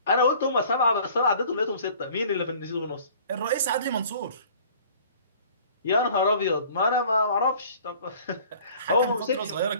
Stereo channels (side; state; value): both; inverted; correlation -0.50